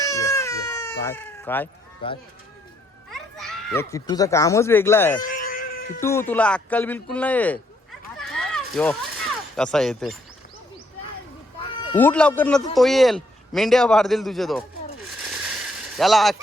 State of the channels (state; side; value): normal; both; correlation 0.71